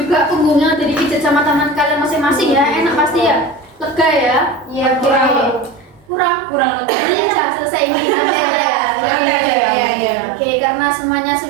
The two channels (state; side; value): drops out; left; at 6.1 s